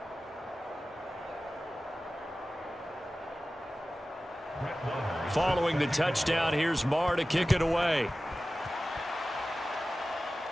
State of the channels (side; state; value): both; normal; correlation 0.96